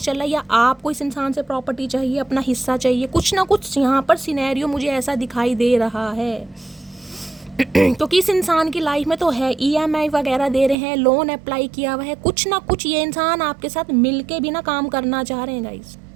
चल रहा है। या आपको इस इंसान से प्रॉपर्टी चाहिए, अपना हिस्सा चाहिए, कुछ ना कुछ यहाँ पर सिनेरियो मुझे ऐसा दिखाई दे रहा है। क्योंकि इस इंसान की लाइफ में तो है, EMI वगैरह दे रहे हैं, लोन अप्लाई किया हुआ है, कुछ ना कुछ ये इंसान आपके साथ मिलके भी ना काम करना चाह रहे हैं गाइस।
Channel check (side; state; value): left; drops out; at 10.8 s